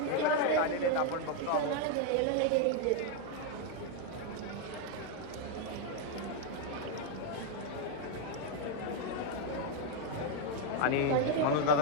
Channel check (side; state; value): both; different; correlation 0.01